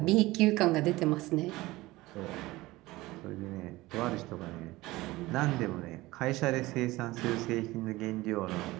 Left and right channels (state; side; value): quieter; left; 19.3 dB